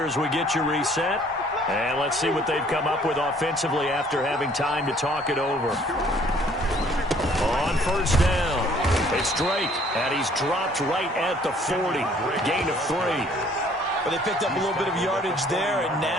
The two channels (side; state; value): both; normal; correlation 0.58